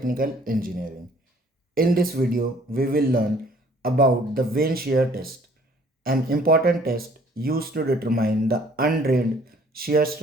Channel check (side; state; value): both; normal; correlation 0.57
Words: Engineering. In this video, we will learn about the Vane Shear Test, an important test used to determine the undrained shear